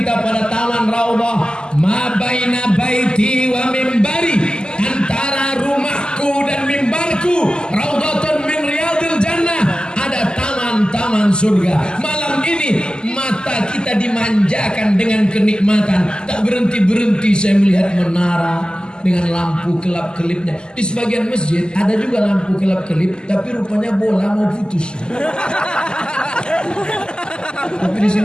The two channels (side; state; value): right; late; 0.047 ms